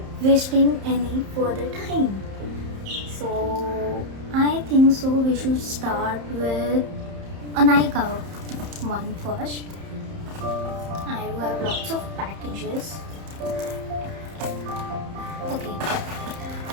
wasting any further time. So I think so we should start with a Nykaa one first. I do have lots of packages. Okay.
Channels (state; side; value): late; left; 31 ms